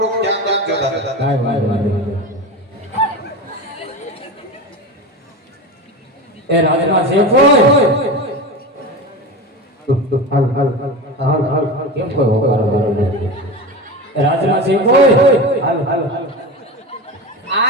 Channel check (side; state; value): both; normal; correlation 0.26